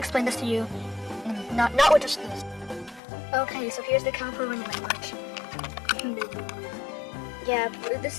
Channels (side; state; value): right; drops out; at 3.0 s